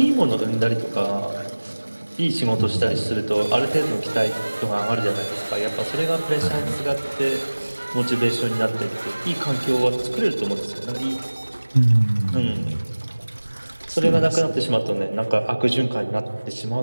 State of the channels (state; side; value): inverted; both; correlation -1.00